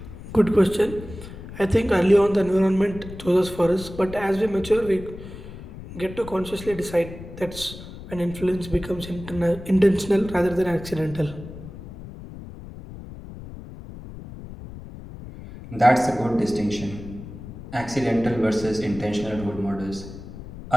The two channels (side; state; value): left; noise; rumble, 13 dB below the sound